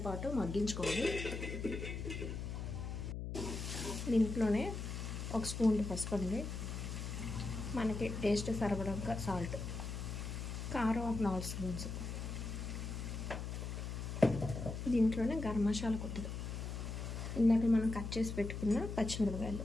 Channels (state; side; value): noise; left; hum, 5 dB below the sound